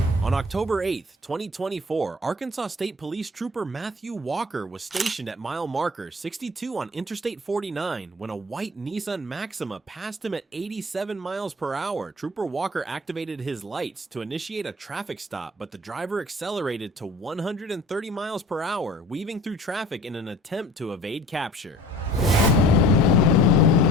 On October 8th, 2024, Arkansas State Police Trooper Matthew Walker was stationed at mile marker 62 on Interstate 49 when a white Nissan Maxima passed him at 87 miles per hour. Trooper Walker activated his lights to initiate a traffic stop, but the driver accelerated to 130 miles per hour, weaving through traffic in an attempt to evade capture.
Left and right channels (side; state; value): both; normal; correlation 0.46